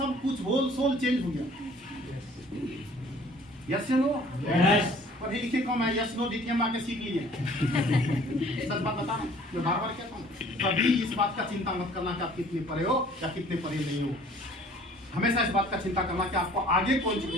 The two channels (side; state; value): both; normal; correlation 0.53